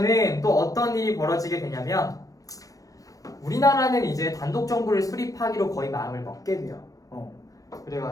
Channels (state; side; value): late; right; 0.17 ms